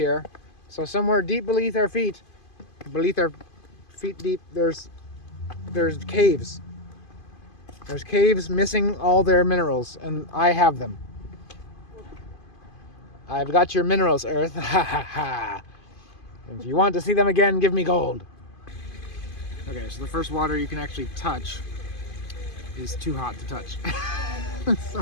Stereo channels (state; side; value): late; right; 2.5 ms